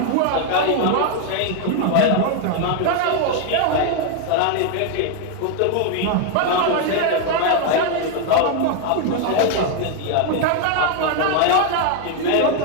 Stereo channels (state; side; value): different; both; correlation 0.01